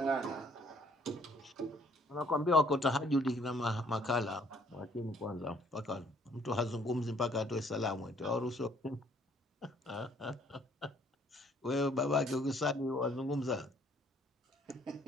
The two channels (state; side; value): normal; both; correlation 0.62